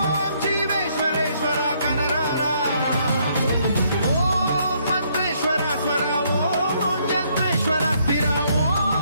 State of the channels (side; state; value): both; inverted; correlation -0.69